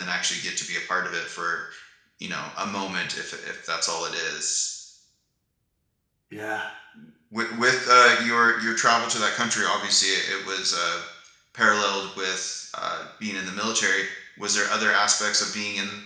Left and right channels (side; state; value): both; identical; correlation 1.00